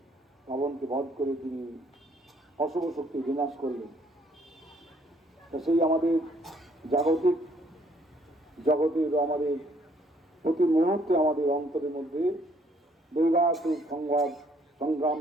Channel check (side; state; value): both; normal; correlation 0.65